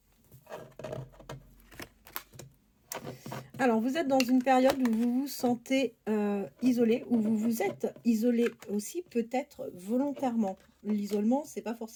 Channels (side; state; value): both; identical; correlation 1.00